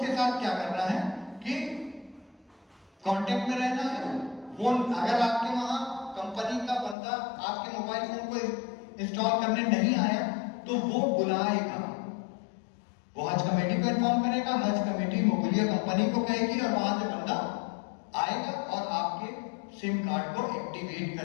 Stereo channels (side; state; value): right; drops out; at 7.0 s